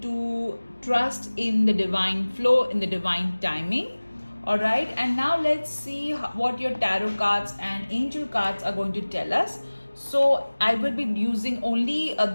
to trust in the divine flow, in the divine timing. Alright, and now let's see what your tarot cards and angel cards are going to tell us. So I will be using only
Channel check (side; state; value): both; inverted; correlation -1.00